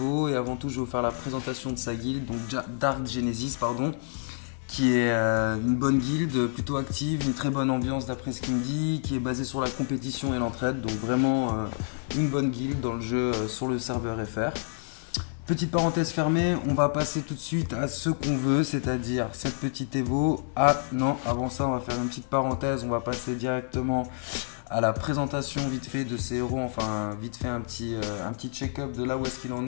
Et avant tout, je vais vous faire la présentation de sa guilde, donc Dark Genesis, pardon, qui est une bonne guilde, plutôt active, une très bonne ambiance d'après ce qu'il me dit, qui est basée sur la compétition et l'entraide, donc vraiment une bonne guilde dans le jeu sur le serveur FR. Petite parenthèse fermée, on va passer tout de suite à ce qu'on veut, c'est-à-dire cette petite Evo. Ah non, avant ça, on va faire une petite parenthèse, on va passer directement à la présentation vite fait de ces héros, enfin vite fait un petit check-up de là où est-ce qu'il en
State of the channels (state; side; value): silent; right; 59 dB below the other